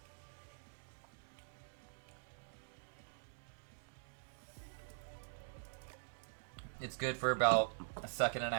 It's good for about a second and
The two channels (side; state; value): left; silent; digital silence